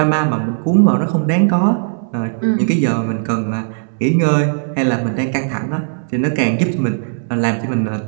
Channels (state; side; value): silent; left; digital silence